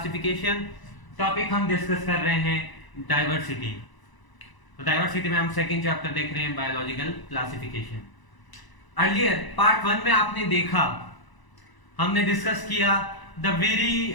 Topic हम डिस्कस कर रहे हैं डाइवर्सिटी। तो डाइवर्सिटी में हम सेकंड चैप्टर देख रहे हैं बायोलॉजिकल क्लासिफिकेशन। अर्लियर पार्ट 1 में आपने देखा, हमने डिस्कस किया the very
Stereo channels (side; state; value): right; late; 1.0 ms